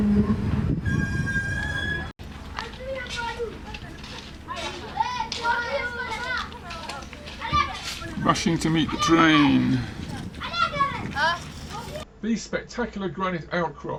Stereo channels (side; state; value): both; identical; correlation 1.00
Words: Rushing to meet the train. These spectacular granite